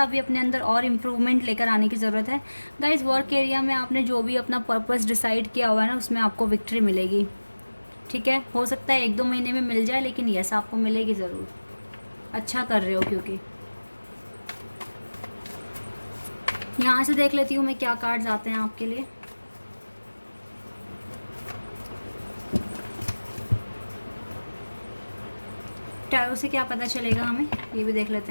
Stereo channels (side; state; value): both; inverted; correlation -1.00